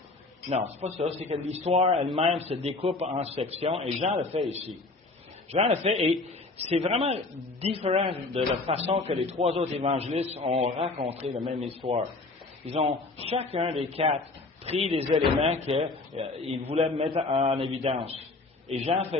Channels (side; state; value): right; quieter; 3.4 dB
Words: Non, c'est pas ça. C'est que l'histoire elle-même se découpe en sections, et Jean le fait ici. Jean le fait, et c'est vraiment différent de la façon que les trois autres évangélistes ont raconté la même histoire. Ils ont, chacun des quatre, pris des éléments qu'ils voulaient mettre en évidence. Et Jean